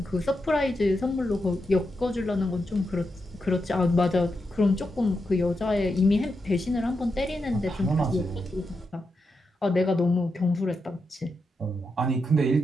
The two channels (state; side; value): normal; both; correlation 0.86